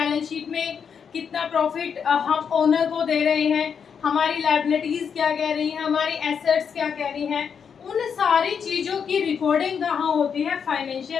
शीट में कितना प्रॉफिट हम ओनर को दे रहे हैं, हमारी लायबिलिटीज क्या कह रही हैं, हमारी एसेट्स क्या कह रही हैं, उन सारी चीजों की रिकॉर्डिंग कहाँ होती है?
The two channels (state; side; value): quieter; right; 6.9 dB